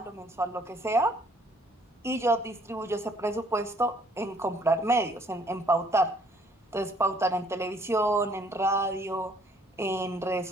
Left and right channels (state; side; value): normal; both; correlation 0.62